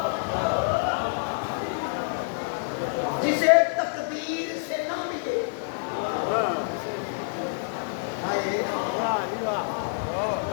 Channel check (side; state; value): right; silent; digital silence